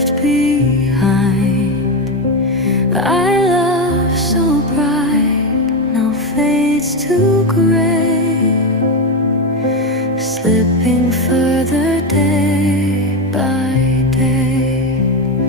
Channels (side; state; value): both; normal; correlation 0.12